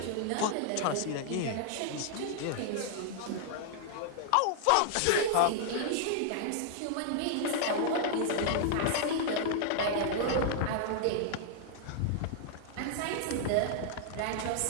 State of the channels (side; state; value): both; different; correlation -0.01